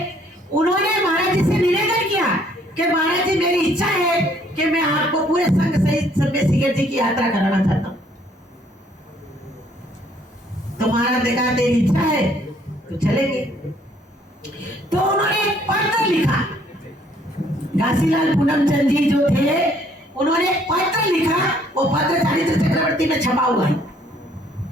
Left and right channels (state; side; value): normal; both; correlation 0.63